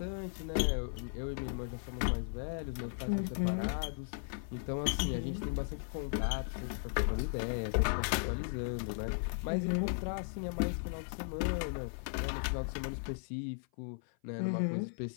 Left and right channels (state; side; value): silent; right; 53 dB below the other